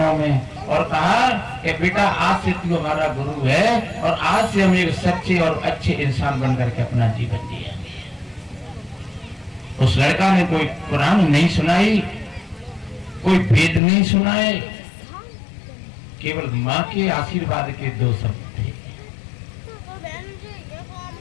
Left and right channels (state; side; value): drops out; right; at 13.8 s